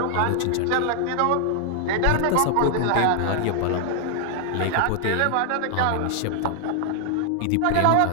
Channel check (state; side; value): different; both; correlation 0.00